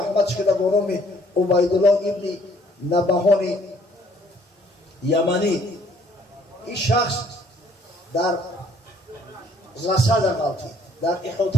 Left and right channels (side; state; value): both; normal; correlation 0.62